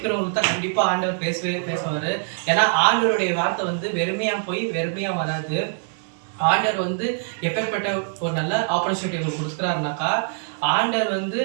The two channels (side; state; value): left; silent; 63 dB below the other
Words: தான் கண்டிப்பா ஆண்டவர் பேசுவாரு. ஏன்னா ஆண்டவருடைய வார்த்தை வெறுமையா போய் வெறுமையா வராது. ஆண்டவர் எப்பேற்பட்ட ஒரு நல்ல ஆப்பர்ச்சுனிட்டி உங்களுக்கு கொடுக்குறாருனாக்கா, ஆண்டவர்